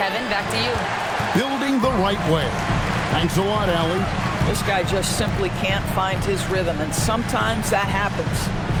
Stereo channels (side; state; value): both; identical; correlation 1.00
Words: Kevin, back to you. Building the right way. Thanks a lot, Allie. This guy just simply can't find his rhythm, and sometimes that happens.